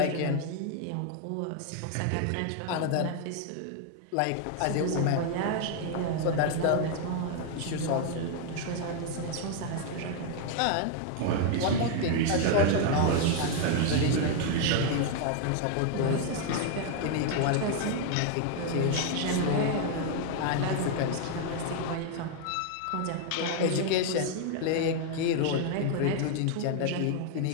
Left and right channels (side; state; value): both; different; correlation 0.00